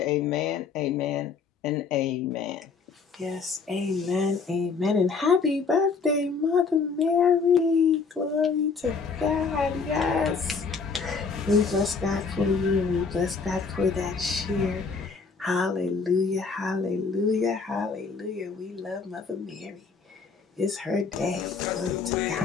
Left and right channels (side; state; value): right; quieter; 5.0 dB